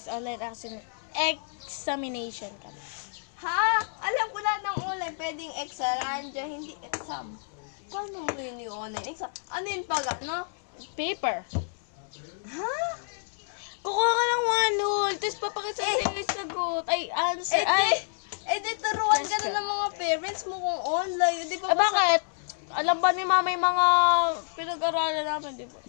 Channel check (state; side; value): silent; right; 56 dB below the other